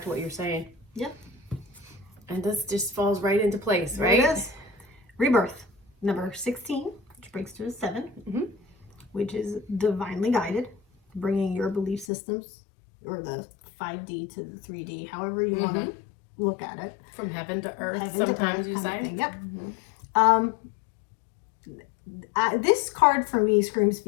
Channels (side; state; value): right; drops out; at 12.1 s